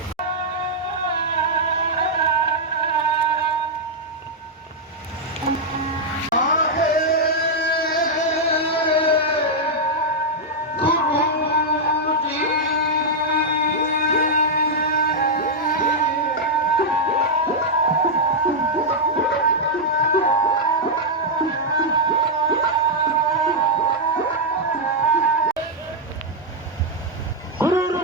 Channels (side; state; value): both; normal; correlation -0.04